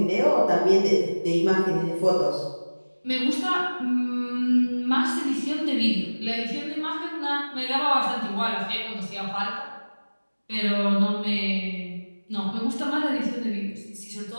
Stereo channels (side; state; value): both; inverted; correlation -1.00